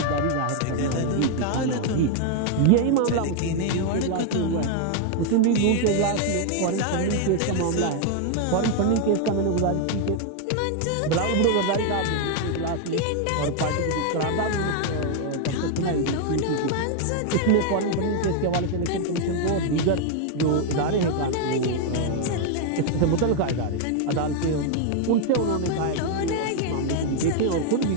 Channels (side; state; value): both; different; correlation 0.00